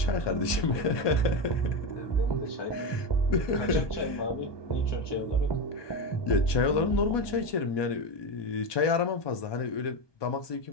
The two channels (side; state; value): right; late; 1.2 ms